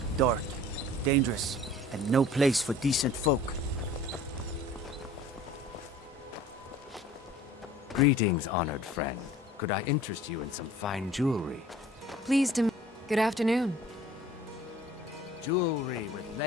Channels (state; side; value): normal; both; correlation 0.47